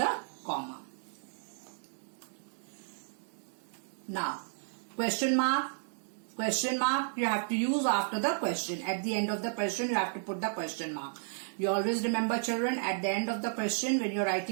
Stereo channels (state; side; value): silent; left; digital silence